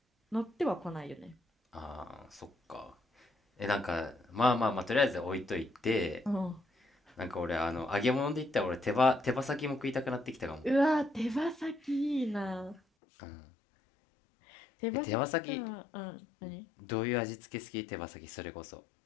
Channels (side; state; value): right; drops out; at 12.8 s